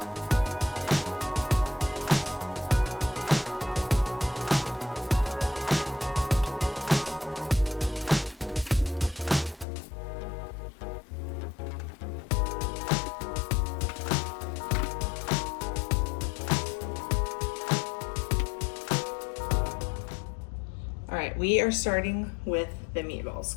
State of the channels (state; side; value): drops out; right; at 9.7 s